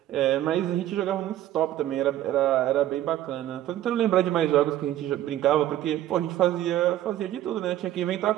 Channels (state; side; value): quieter; left; 13.1 dB